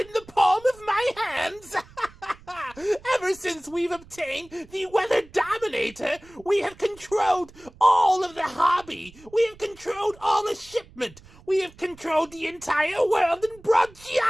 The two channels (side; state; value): right; noise; rumble, 23 dB below the sound